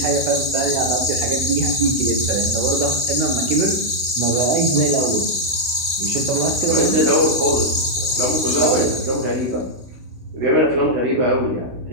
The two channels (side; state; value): left; late; 16 ms